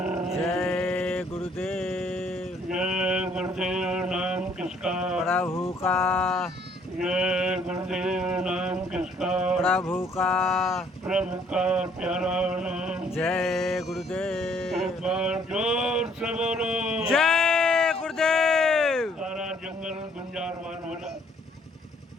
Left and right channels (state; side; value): normal; both; correlation 0.63